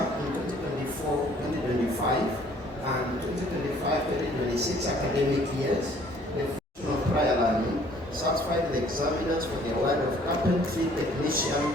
in 2024-2025 and 2025-2026 academic years, the function of prior learning satisfied the examiners for the award of Carpentry Technician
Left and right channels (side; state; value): both; normal; correlation 0.58